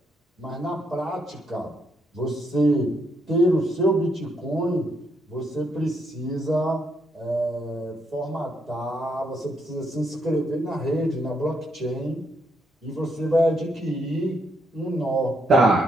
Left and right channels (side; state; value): both; normal; correlation 0.76